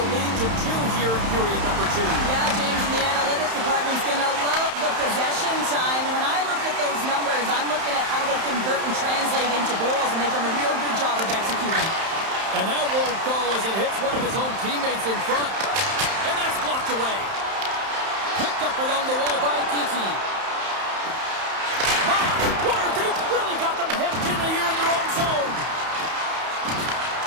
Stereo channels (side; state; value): left; late; 31 ms